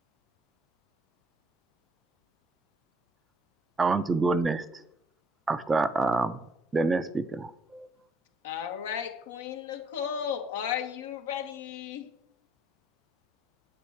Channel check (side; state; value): both; normal; correlation 0.67